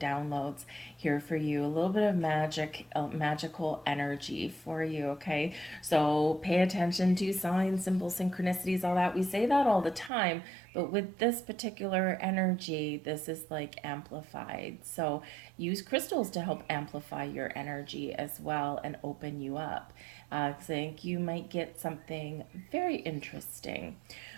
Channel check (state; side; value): drops out; left; at 10.1 s